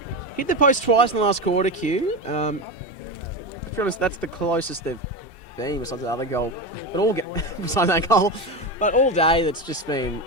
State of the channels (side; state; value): right; late; 2.7 ms